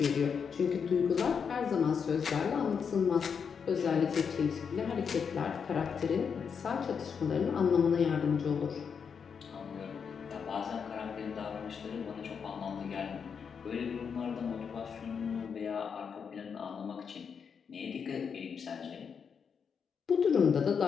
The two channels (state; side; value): quieter; right; 6.5 dB